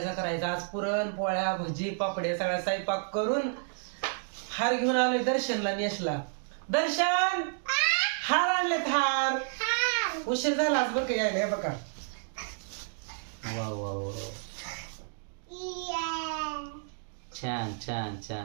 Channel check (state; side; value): silent; left; digital silence